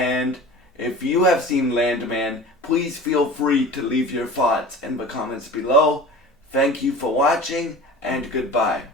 if you have seen Landman, please feel free to leave your thoughts in the comments below. Thank you for watching, and goodbye.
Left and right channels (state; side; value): normal; both; correlation 0.37